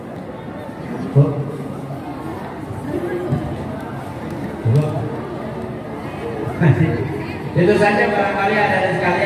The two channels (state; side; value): identical; both; correlation 1.00